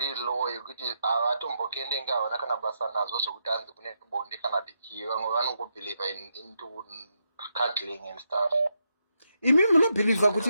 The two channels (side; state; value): both; inverted; correlation -0.81